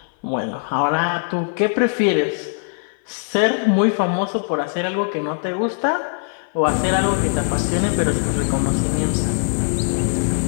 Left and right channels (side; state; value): right; silent; 57 dB below the other